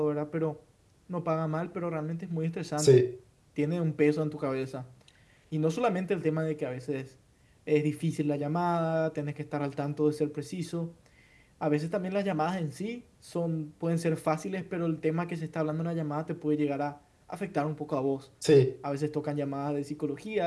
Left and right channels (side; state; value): both; identical; correlation 1.00